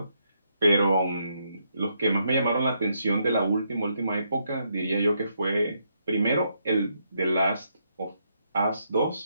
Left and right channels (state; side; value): inverted; both; correlation -0.77